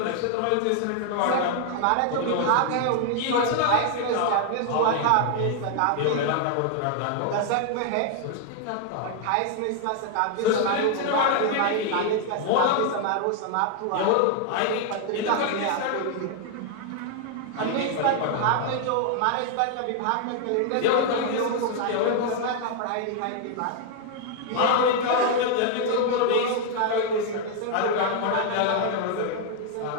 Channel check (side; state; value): both; different; correlation 0.00